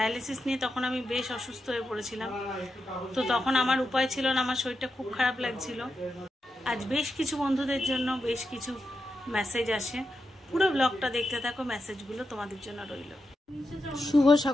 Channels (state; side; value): normal; both; correlation 0.87